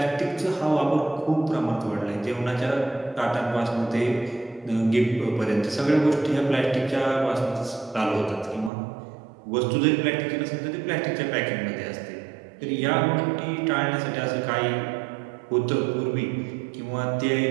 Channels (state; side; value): drops out; left; at 8.7 s